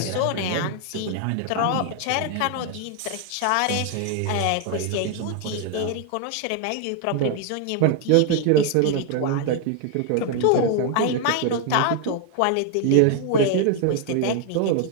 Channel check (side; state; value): both; different; correlation 0.01